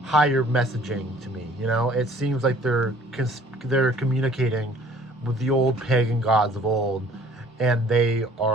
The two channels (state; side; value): normal; both; correlation 0.54